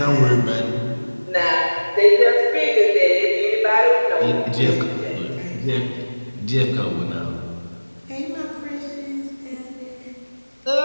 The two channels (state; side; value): inverted; both; correlation -1.00